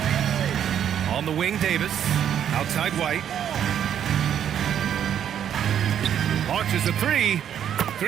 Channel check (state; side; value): quieter; left; 9.4 dB